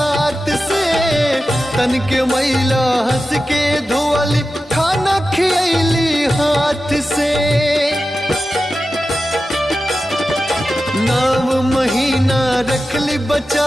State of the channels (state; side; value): normal; both; correlation 0.92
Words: से। तन के मैला हंस के धोअली खाना खियली हाथ से। 9 महीना रखली